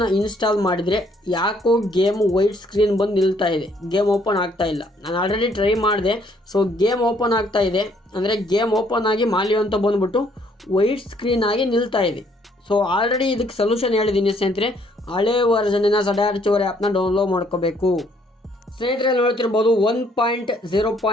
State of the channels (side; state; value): both; normal; correlation 0.66